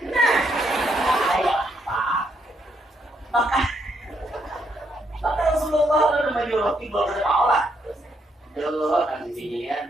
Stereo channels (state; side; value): normal; both; correlation 0.75